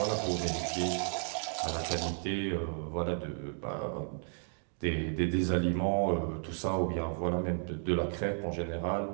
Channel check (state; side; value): silent; left; 55 dB below the other